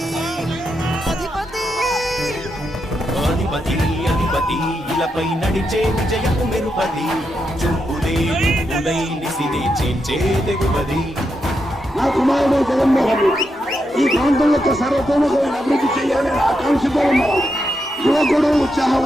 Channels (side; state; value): both; normal; correlation 0.84